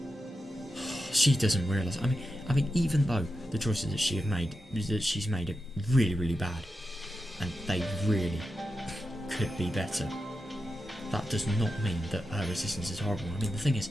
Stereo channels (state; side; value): normal; both; correlation 0.90